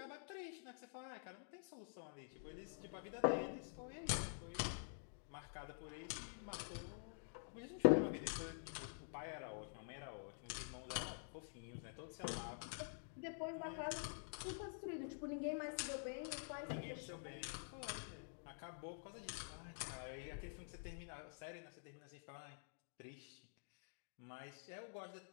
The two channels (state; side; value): silent; right; digital silence